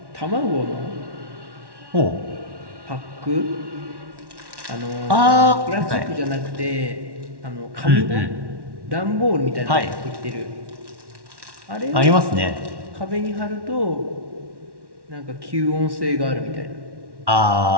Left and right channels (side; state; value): left; late; 1.1 ms